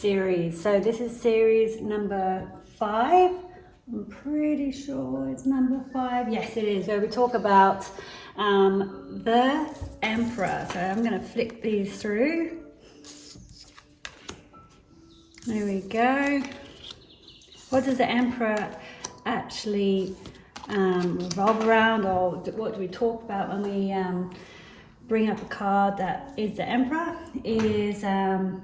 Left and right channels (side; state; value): both; identical; correlation 1.00